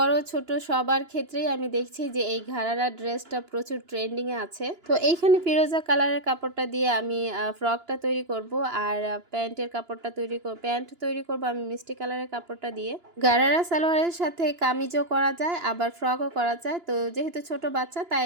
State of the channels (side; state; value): left; late; 2.9 ms